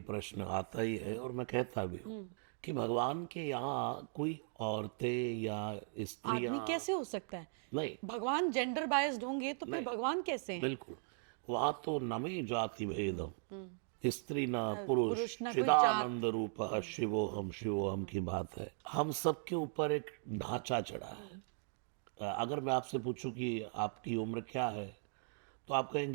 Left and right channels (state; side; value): silent; left; 52 dB below the other